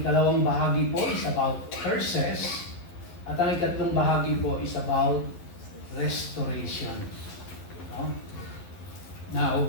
ikalawang bahagi po is about curses. At ang ikatlong bahagi po is about restoration. No?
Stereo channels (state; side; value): late; right; 11 ms